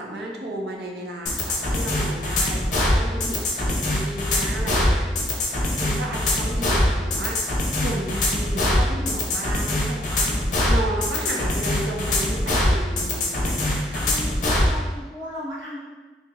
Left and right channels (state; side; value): normal; both; correlation 0.66